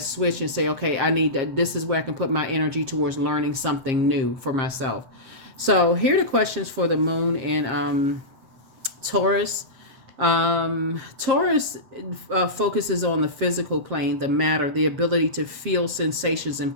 and say, okay, this is where I can put my energy towards learning something new for myself. So here are the questions for the moon in Taurus. Taurus focuses on the physical plane, the matter, the ability to feel sensations and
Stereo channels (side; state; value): left; late; 7.5 ms